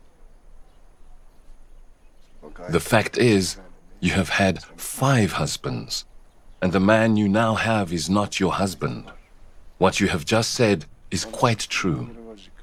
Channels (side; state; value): both; identical; correlation 1.00